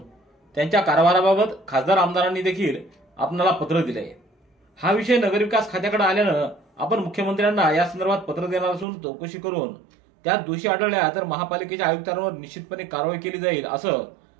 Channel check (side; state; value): left; drops out; at 8.8 s